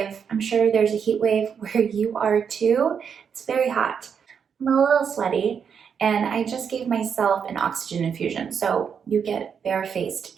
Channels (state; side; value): quieter; left; 7.0 dB